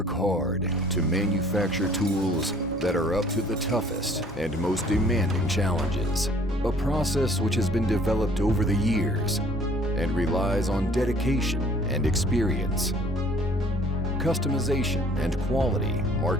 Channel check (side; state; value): both; normal; correlation 0.55